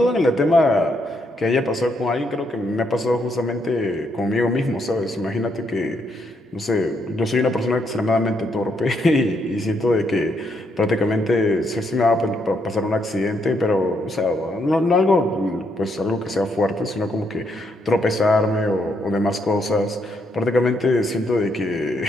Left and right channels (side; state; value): both; normal; correlation 0.76